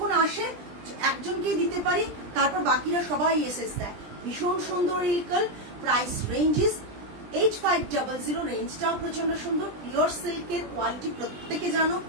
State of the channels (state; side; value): late; left; 20 ms